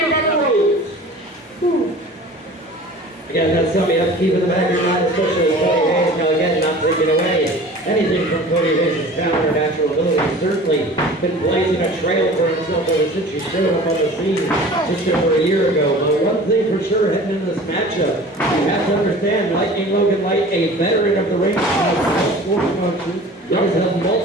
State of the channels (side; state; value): both; normal; correlation 0.42